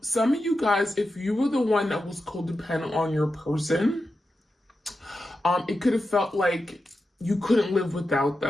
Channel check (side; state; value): both; normal; correlation 0.90